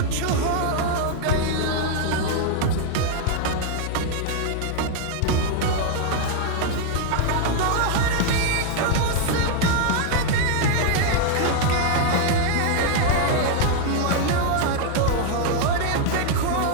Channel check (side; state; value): both; different; correlation 0.00